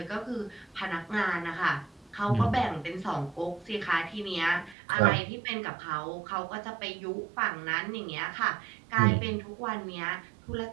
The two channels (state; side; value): drops out; left; at 4.8 s